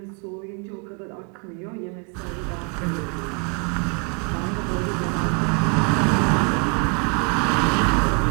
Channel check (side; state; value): left; quieter; 34.9 dB